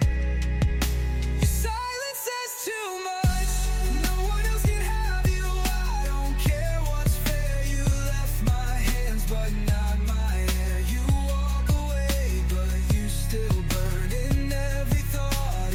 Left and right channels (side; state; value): both; identical; correlation 1.00